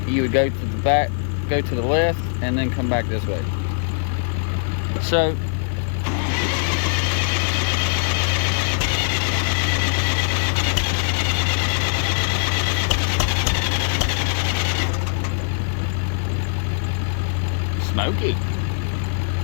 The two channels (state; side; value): silent; right; digital silence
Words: you would go to the back, go to the left, and then come back this way. So smoky.